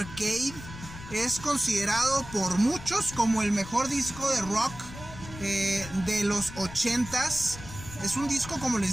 es considerado por muchos como el mejor disco de rock de los 80s. Es un disco, como les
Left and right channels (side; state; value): left; noise; rumble, 14 dB below the sound